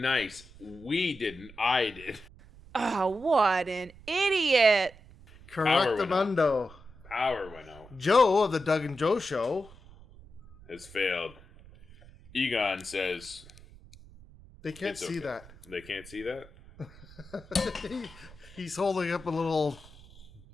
nice. We didn't. I did. Oh, what an idiot. Correctamundo. Power went out. Joe of the Doug and Joe Show. Has failed. Egon says... They can't It's see okay. that. They can't see that? He's holding up a little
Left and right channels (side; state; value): right; noise; rumble, 21 dB below the sound